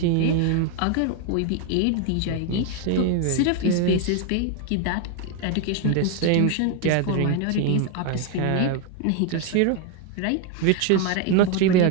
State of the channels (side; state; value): both; different; correlation 0.01